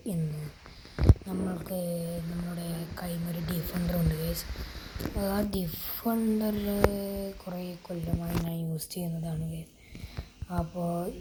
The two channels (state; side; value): identical; both; correlation 1.00